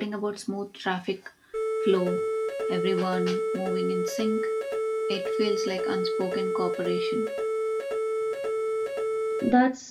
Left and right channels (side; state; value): both; identical; correlation 1.00